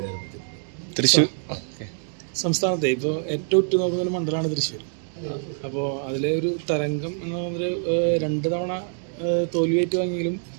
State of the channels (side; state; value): left; silent; digital silence